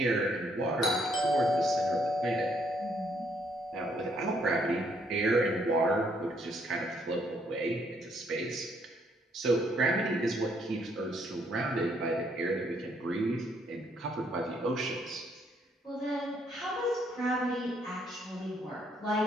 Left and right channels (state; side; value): normal; both; correlation 0.70